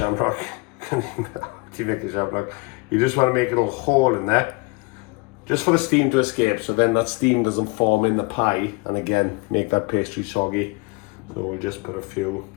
Do you make a shamrock? You just want to make a little hole in there, just for the steam to escape, so then that steam doesn't form in the pie and again make that pastry soggy. So we'll just put a few.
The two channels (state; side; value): quieter; right; 27.1 dB